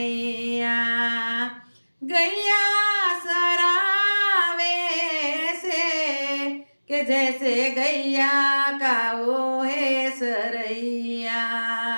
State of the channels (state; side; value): inverted; both; correlation -1.00